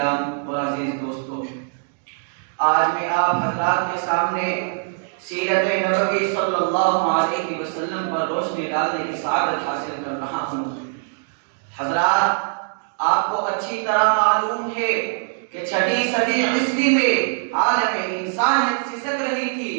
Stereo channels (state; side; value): silent; left; digital silence